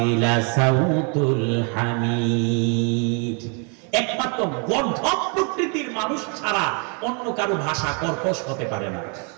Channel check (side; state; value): left; quieter; 36.8 dB